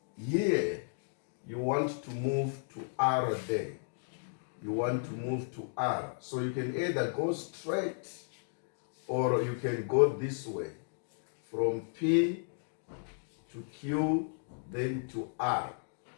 here, you want to move to R there. You want to move to R. So you can either go straight or you can go this way from P to Q then to R.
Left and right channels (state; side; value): silent; right; digital silence